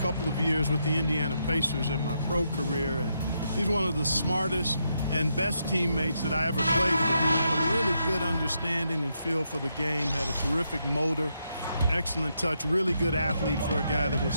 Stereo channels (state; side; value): inverted; both; correlation -0.80